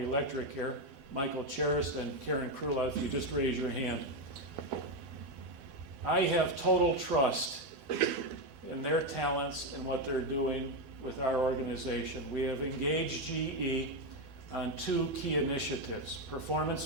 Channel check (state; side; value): late; left; 12 ms